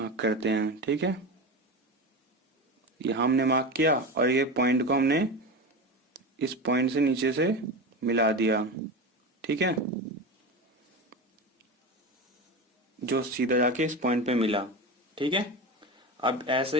करते हैं। ठीक है, यहाँ हमने मार्क किया और ये पॉइंट को हमने इस पॉइंट से नीचे से मिला दिया। ठीक है, जो सीधा जाके इस पॉइंट पे मिला। ठीक है, अब ऐसे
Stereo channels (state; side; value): normal; both; correlation 0.24